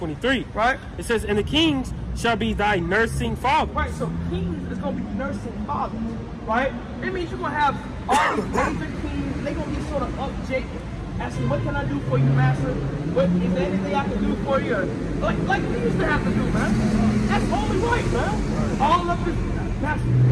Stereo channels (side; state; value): both; identical; correlation 1.00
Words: Right? It says, and the kings shall be thy nursing father. Right, so kings is going to be nursing fathers, right? It means you're going to have all these David kings, they're going to be sort of up Jacob, asking, what can I do for you, master? What, is there anything I can do for you? Like we used to have to do, man. That's only right, man. All up this, master,